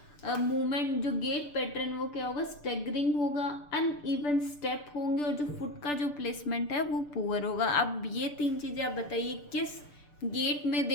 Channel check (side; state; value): right; late; 6.8 ms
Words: मूवमेंट जो गेट पैटर्न वो क्या होगा, स्टैगरिंग होगा, अनइवन स्टेप होंगे, और जो फुट का जो प्लेसमेंट है वो पुअर होगा। अब ये तीन चीज़ें आप बताइए किस गेट में